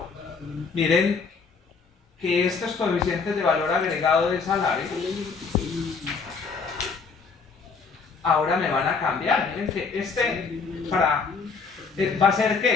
Miren que estos coeficientes de valor agregado de salarios ahora me van a cambiar. Miren que va a ser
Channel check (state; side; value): quieter; right; 5.0 dB